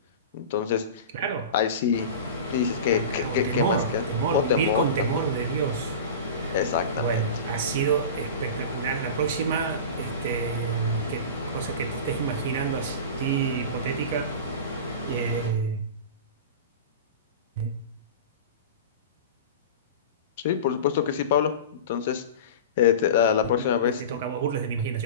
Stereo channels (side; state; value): both; inverted; correlation -0.31